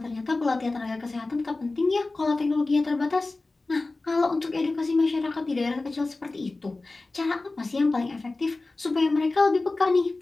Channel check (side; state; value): right; quieter; 3.3 dB